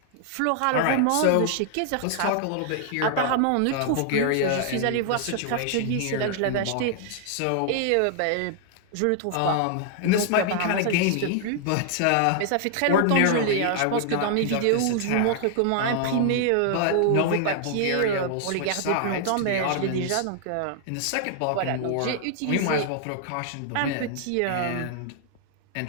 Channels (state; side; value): different; both; correlation 0.00